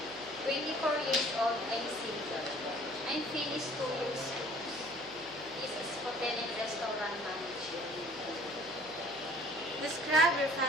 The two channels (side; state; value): right; noise; hum, 22 dB below the sound